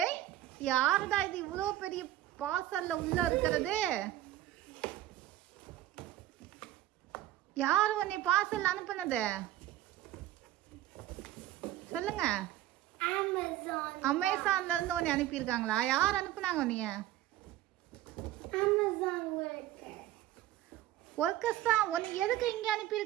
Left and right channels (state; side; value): quieter; left; 13.8 dB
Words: யாருடா இது இவ்வளோ பெரிய பார்சல்ல உள்ள இருக்கிறது? யாரு உன்னை பார்சல் அனுப்புனது? சொல்லுங்க. அமேசான்ல இருந்து உன்னை அனுப்பியிருக்காங்களா? யார் அனுப்புனாங்க உன்னைய? ஒர்க்கர்ஸ் தான். உன்னை எதுக்கு இங்கே